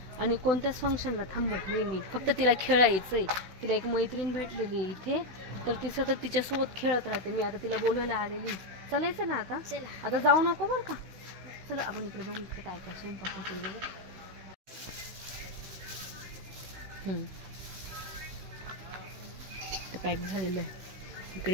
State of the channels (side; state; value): left; late; 16 ms